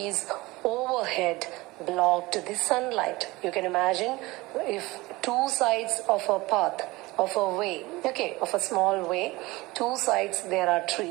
overhead blocked the sunlight. You can imagine if two sides of a path, of a way, okay, of a small way, two sides there are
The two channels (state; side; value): quieter; left; 21.2 dB